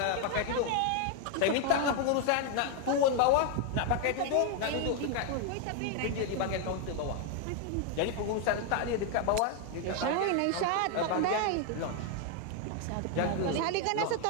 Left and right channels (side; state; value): both; different; correlation 0.01